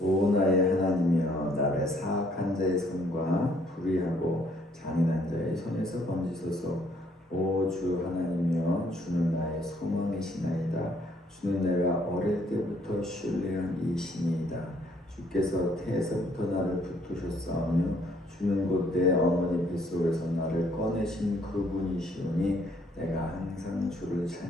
오 나의 하나님이여, 나를 사악한 자의 손과 불의하고 잔인한 자의 손에서 건지소서. 오 주 하나님이여, 주는 나의 소망이시나이다. 주는 내가 어릴 때부터 신뢰한 이 신이다. 주께서 태에서부터 나를 붙드셨사오며 주는 곧 내 어머니 뱃속에서 나를 꺼내신 그분이시오니 내가 항상 주를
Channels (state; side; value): normal; both; correlation 0.65